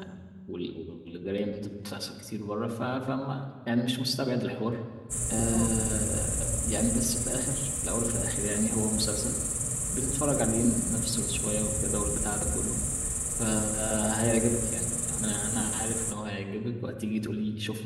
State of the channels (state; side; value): identical; both; correlation 1.00